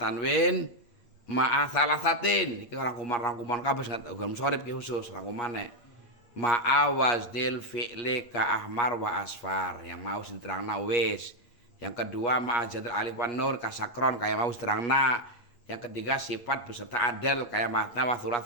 ma'a salasatin. Iki rangkuman kabeh munsharif ki khusus rangkumane. Ma'a waznil fi'li ka ahmar wa asfar yang mau diterangna wis. Yang kedua ma'a jadal alif wan nur ka sakron kayak mau diterangna. Yang ketiga sifat beserta adal kayak matna wa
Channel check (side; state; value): right; late; 8.4 ms